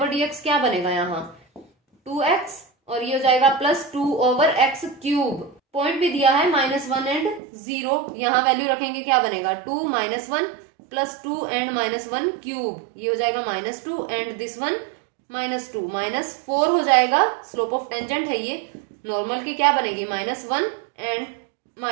क्या बनेगा यहाँ 2x, और ये हो जाएगा +2/x³, पॉइंट भी दिया है -1 एंड 0, यहाँ वैल्यू रखेंगे क्या बनेगा 2 -1 +2 एंड -1³, ये हो जाएगा -2 एंड दिस वन -2, -4 हो जाएगा, स्लोप ऑफ टेंजेंट है ये, नॉर्मल की क्या बनेगी -1 एंड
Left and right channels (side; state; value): left; drops out; at 7.4 s